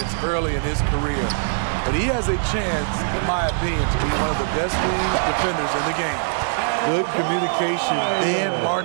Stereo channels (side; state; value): left; silent; digital silence